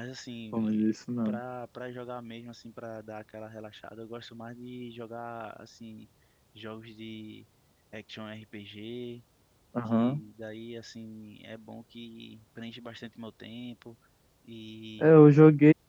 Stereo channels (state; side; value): identical; both; correlation 1.00